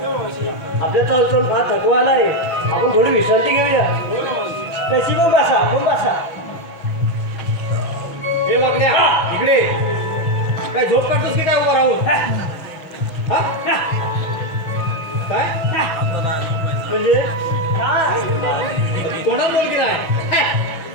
आपल्या चालून फार थकवा आलाय, आपण थोडी विश्रांती घेऊया. तशी पण बसा. हे वागण्या इकडे काय झोप काढतोस की काय उभा राहून हा? काय म्हणजे कोणाला बोल की नाही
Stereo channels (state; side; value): late; right; 6.2 ms